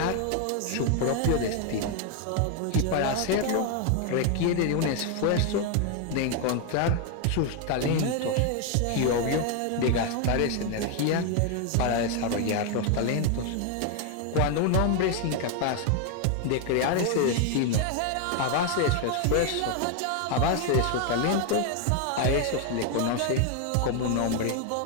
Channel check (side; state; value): both; different; correlation 0.01